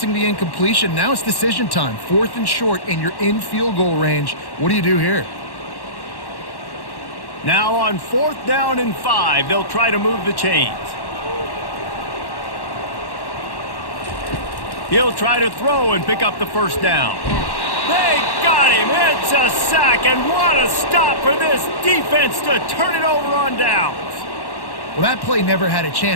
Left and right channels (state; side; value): late; right; 1.1 ms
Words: the incompletion. Now it's decision time. 4th and short, and you're in field goal range. What do you do here? Now on 4th down and 5, they'll try to move the chains. He'll try to throw and pick up the first down. They got him. It's a sack, and what a stop for this defense to turn it over on downs. Well, that play never had a